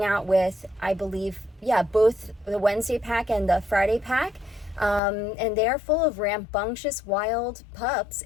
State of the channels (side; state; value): right; drops out; at 5.0 s